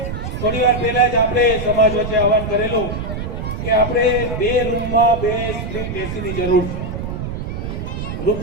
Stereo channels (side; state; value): right; noise; rumble, 5 dB below the sound